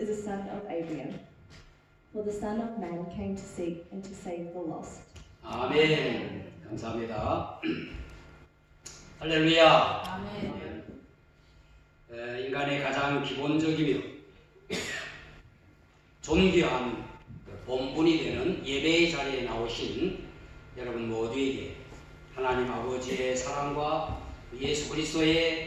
a son of Abraham. For the Son of Man came to seek and to save the lost." 아멘. 감사합니다. 할렐루야. 아멘. 인간의 가장 기본적이며 존귀한 본분이 되는 예배의 자리에 나오신 여러분 모두에게 하나님 아버지의 사랑과 예수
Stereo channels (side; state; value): both; identical; correlation 1.00